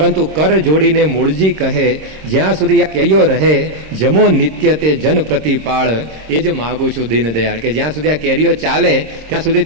કર જોડીને મૂળજી કહે જ્યાં સુધી આ કેરીઓ રહે જમો નિત્ય તે જન પ્રતિપાળ, એ જ માગું છું દીનદયાળ, કે જ્યાં સુધી આ કેરીઓ ચાલે ત્યાં સુધી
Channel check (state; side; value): late; left; 26 ms